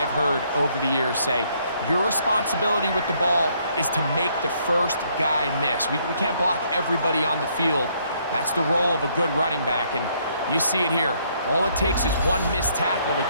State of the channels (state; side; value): inverted; both; correlation -0.69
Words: heard over the years say, your responsibility with the ball is to make the first guy miss. We can't block everybody on the field. That's the role of a good running back, and you see it here. All it takes is one missed tackle to